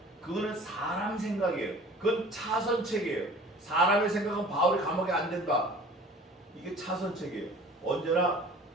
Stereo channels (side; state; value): both; normal; correlation 0.46